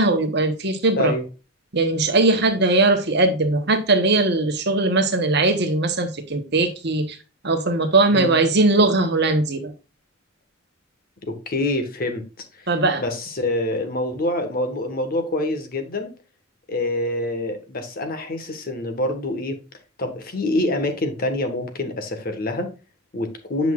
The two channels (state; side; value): normal; both; correlation 0.05